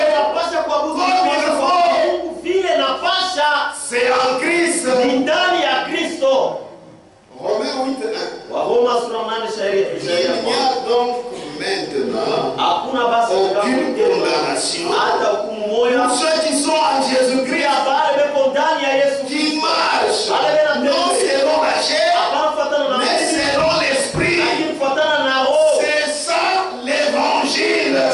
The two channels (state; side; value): identical; both; correlation 1.00